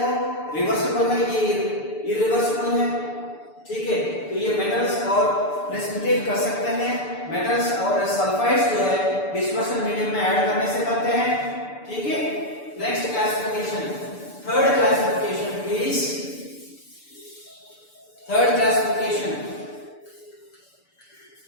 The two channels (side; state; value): right; late; 6.8 ms